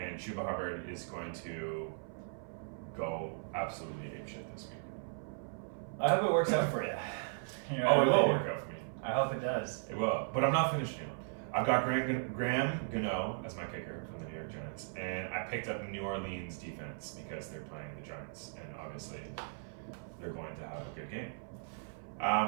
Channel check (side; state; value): left; silent; 53 dB below the other